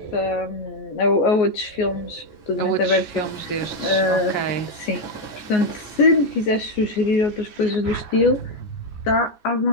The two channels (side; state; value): right; late; 14 ms